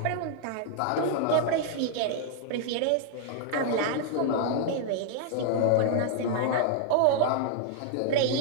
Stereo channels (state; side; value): different; both; correlation -0.01